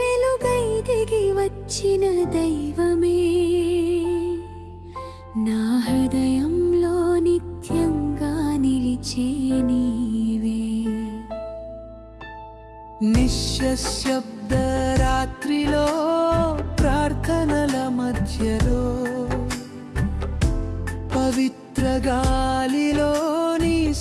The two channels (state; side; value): identical; both; correlation 1.00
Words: దిగి వచ్చిన దైవమే నా హృదయంలో నిత్యంగా నిలిచే నీవే నిశ్శబ్ద రాత్రిలో ప్రార్థనల మధ్యలో పవిత్ర గాలిలో నీ